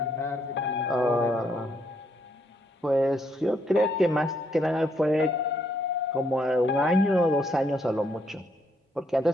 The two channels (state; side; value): normal; both; correlation 0.73